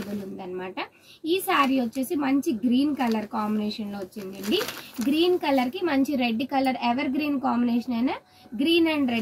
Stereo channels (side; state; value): both; identical; correlation 1.00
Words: ఉందన్నమాట. ఈ శారీ వచ్చేసి మంచి గ్రీన్ కలర్ కాంబినేషన్ లో వచ్చిందండి. గ్రీన్ కలర్ కి మంచి red colour, evergreen combination అయినా green and